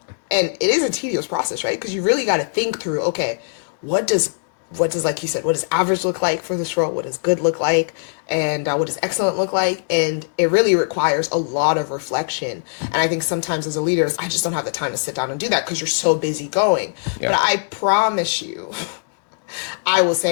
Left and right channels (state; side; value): silent; right; digital silence